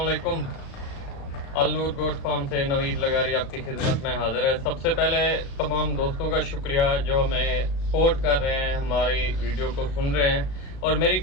Al Noor goat farm से नवीद लगारी आपकी खिदमत में हाजिर है। सबसे पहले तमाम दोस्तों का शुक्रिया जो हमें सपोर्ट कर रहे हैं, हमारी वीडियो को सुन रहे हैं। और मेरी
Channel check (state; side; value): late; right; 36 ms